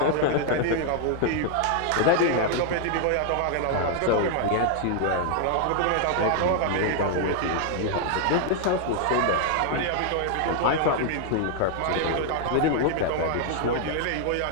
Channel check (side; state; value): both; different; correlation 0.00